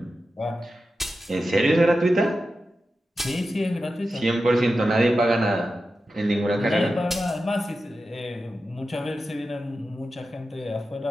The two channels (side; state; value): both; normal; correlation 0.91